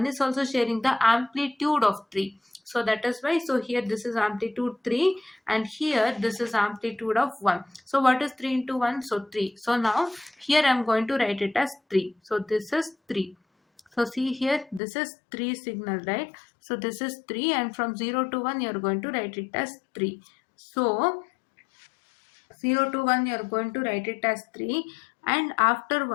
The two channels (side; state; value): right; drops out; at 14.8 s